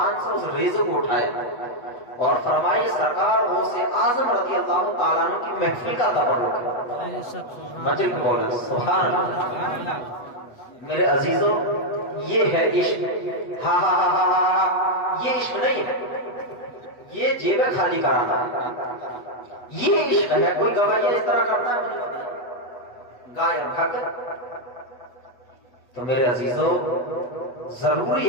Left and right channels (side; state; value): right; late; 8.2 ms